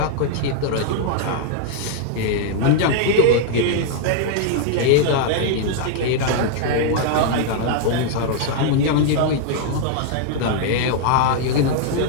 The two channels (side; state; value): both; different; correlation 0.00